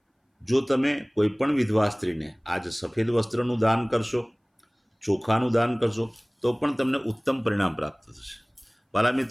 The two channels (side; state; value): both; identical; correlation 1.00